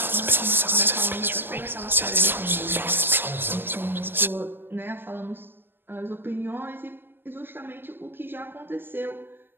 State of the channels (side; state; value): left; late; 0.096 ms